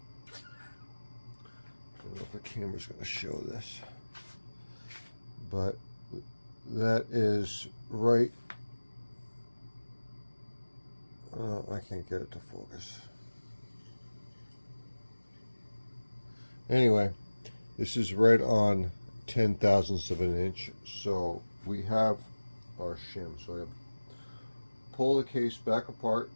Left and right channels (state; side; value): inverted; both; correlation -1.00